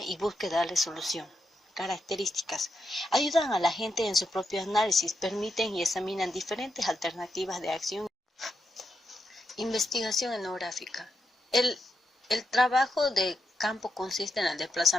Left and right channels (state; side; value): normal; both; correlation 0.84